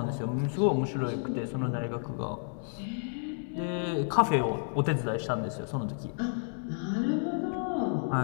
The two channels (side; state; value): right; silent; digital silence